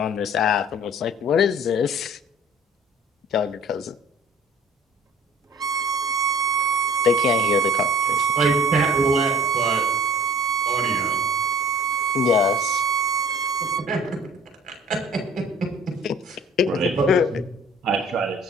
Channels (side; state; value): both; normal; correlation 0.49